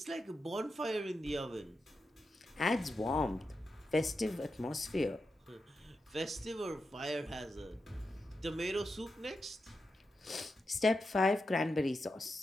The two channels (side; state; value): both; normal; correlation 0.88